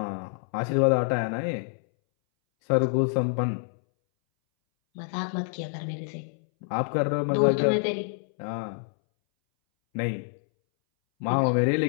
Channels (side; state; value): right; silent; 60 dB below the other